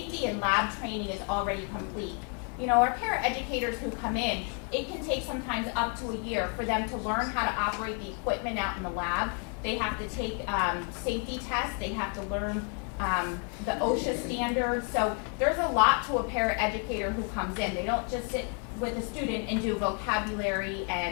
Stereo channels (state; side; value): quieter; right; 39.9 dB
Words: and lab training is already complete. You know, our paraeducators who come in, it can take sometimes up to a year for them to learn how to operate the equipment out in the lab. They have to take safety tests. They have to learn the OSHA standards. So there's a lot to a paraeducator who comes in. They don't just sit with a student and do vocabulary